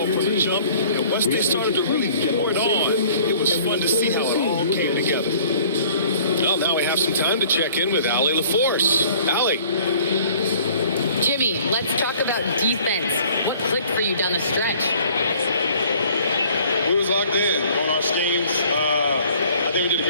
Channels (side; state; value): both; inverted; correlation -0.53